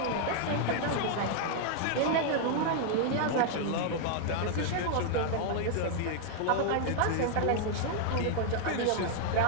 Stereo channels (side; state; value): both; different; correlation 0.00